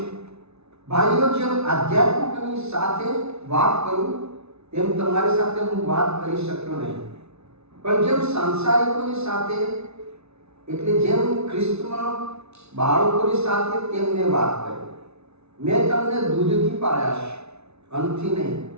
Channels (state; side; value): late; left; 0.81 ms